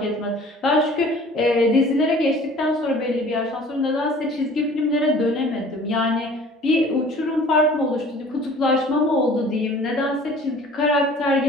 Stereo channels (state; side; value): normal; both; correlation 0.48